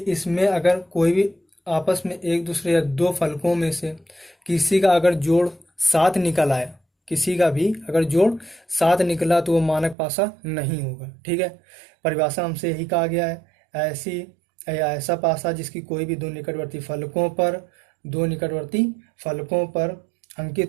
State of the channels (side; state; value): left; drops out; at 10.0 s